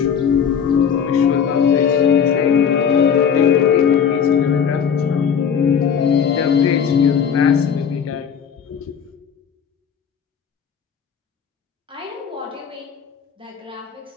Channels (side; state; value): right; quieter; 7.4 dB